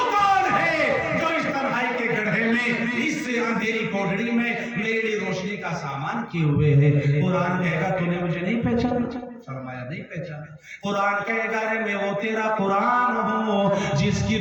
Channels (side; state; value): both; identical; correlation 1.00